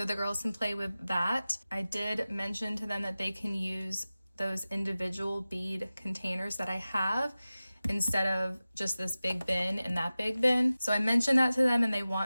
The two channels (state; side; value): inverted; both; correlation -0.96